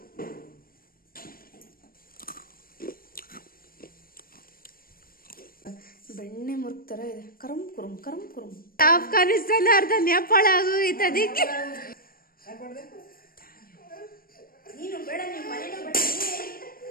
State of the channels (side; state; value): right; late; 0.42 ms